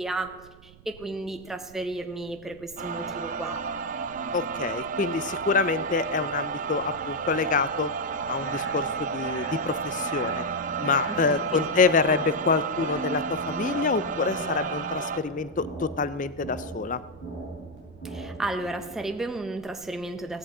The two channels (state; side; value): noise; right; rumble, 23 dB below the sound